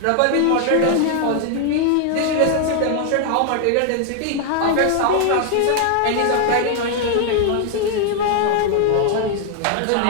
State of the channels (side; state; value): both; different; correlation 0.00